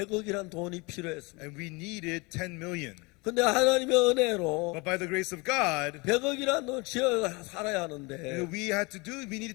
돈이 필요했습니다. And we needed 10 million. 근데 하나님의 은혜로 But by the grace of God, 100억이란 돈 지어 살아야 하는데 we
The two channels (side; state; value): right; quieter; 26.9 dB